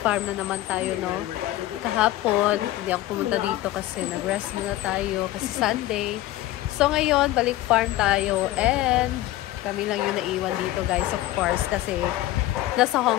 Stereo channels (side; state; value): right; quieter; 15.7 dB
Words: farm na naman tayo, no? Kahapon, hindi ako pumunta dito kasi nag-rest muna tayo kasi Sunday. So, ngayon, balik farm tayo and kami lang yung naiwan dito, guys, of course, kasi nasa